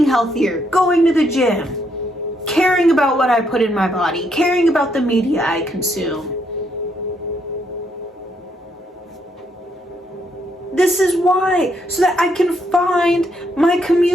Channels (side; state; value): both; normal; correlation 0.75